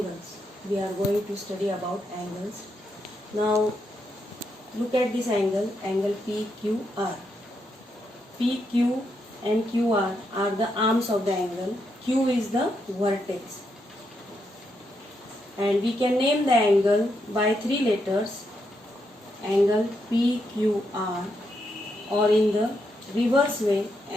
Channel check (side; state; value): both; normal; correlation 0.81